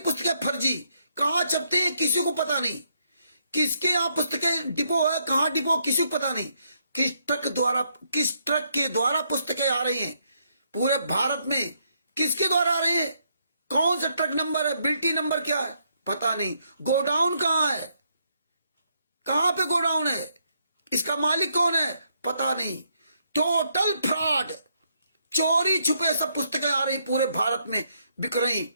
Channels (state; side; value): inverted; both; correlation -0.75